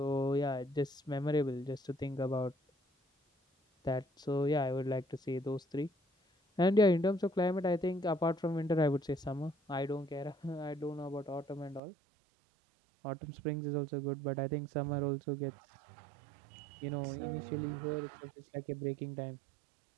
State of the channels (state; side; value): drops out; left; at 11.8 s